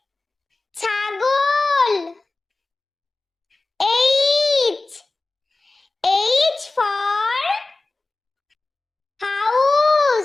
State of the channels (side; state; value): right; quieter; 3.3 dB